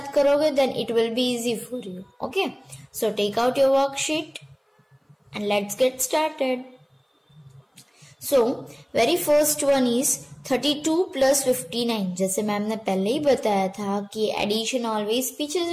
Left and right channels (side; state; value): both; identical; correlation 1.00